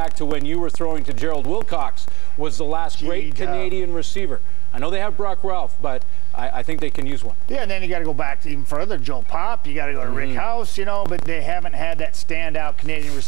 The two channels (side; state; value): left; quieter; 21.1 dB